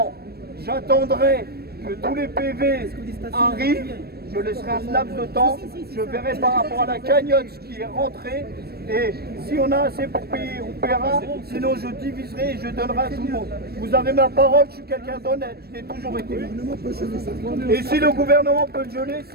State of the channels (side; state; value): left; late; 0.46 ms